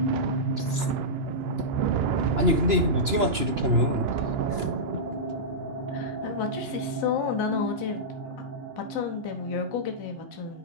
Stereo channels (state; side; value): late; left; 2.9 ms